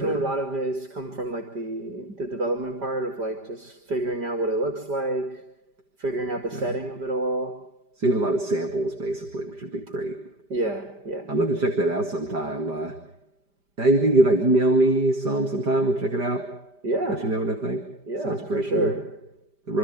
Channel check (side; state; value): left; late; 5.1 ms